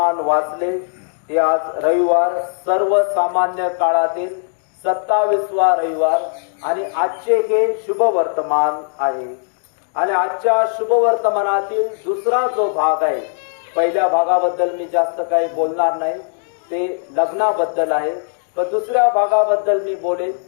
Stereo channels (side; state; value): right; silent; digital silence